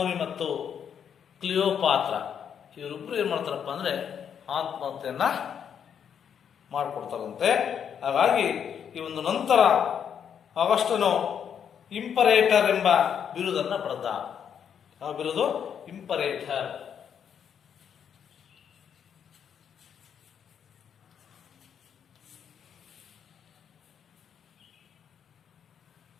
ಮತ್ತು ಕ್ಲಿಯೋಪಾತ್ರ ಇವರಿಬ್ಬರು ಏನ್ ಮಾಡ್ತಾರಪ್ಪ ಅಂದ್ರೆ ಆತ್ಮಹತ್ಯೆಯನ್ನ ಮಾಡಿಕೊಡ್ತಾರಂತೆ. ಹಾಗಾಗಿ ಈ ಒಂದು ನಂತರ ಆಗಸ್ಟನು ಇಂಪರೇಟರ್ ಎಂಬ ಬಿರುದನ್ನ ಪಡೆದ. ಆ ಬಿರುದು ಇಂಪರೇಟರ್.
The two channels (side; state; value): right; quieter; 8.1 dB